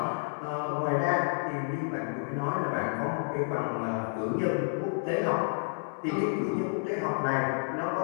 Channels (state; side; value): silent; right; digital silence